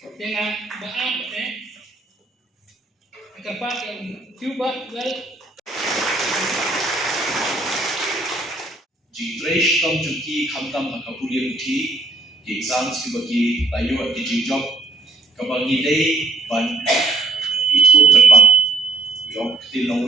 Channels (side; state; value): left; quieter; 3.1 dB